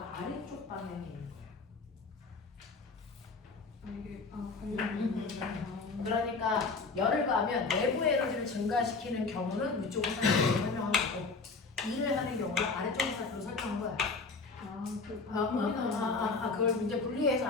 아래쪽 방향에 있는 거예요. 이게 관련된 그러니까 열을 가하면 내부 에너지를 증가시키는 경우는 위쪽 화살표로 설명한 거고 일을 하는 경우는 아래쪽 화살표로 설명한 거야. 그걸 이제 분리해서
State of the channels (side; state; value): right; quieter; 4.2 dB